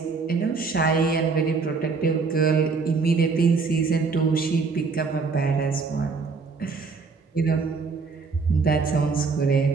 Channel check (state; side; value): quieter; left; 4.6 dB